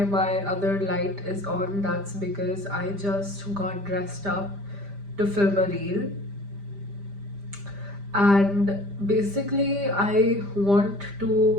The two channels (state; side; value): late; left; 5.0 ms